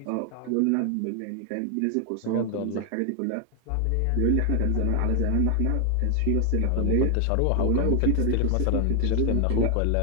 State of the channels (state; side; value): different; both; correlation 0.00